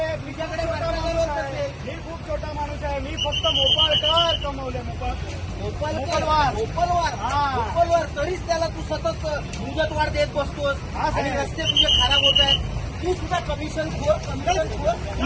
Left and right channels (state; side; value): identical; both; correlation 1.00